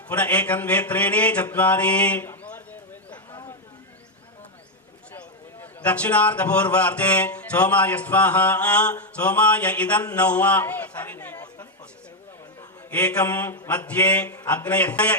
पुनः एकं द्वे त्रीणि चत्वारि दक्षिणार्धपूर्वार्धे सोमाय स्वाहा सोमाय इदन्न एकं मध्ये अग्नय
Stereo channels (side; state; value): both; normal; correlation 0.02